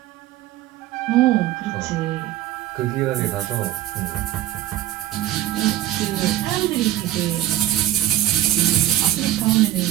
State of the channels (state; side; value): quieter; left; 13.8 dB